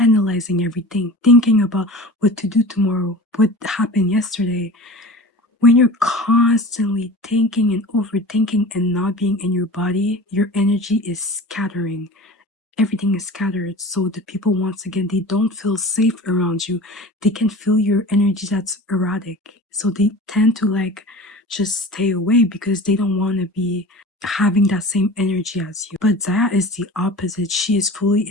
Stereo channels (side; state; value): both; normal; correlation 0.37